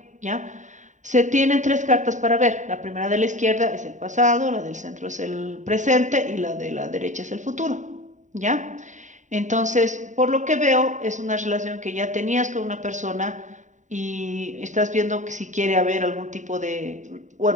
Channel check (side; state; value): left; late; 0.36 ms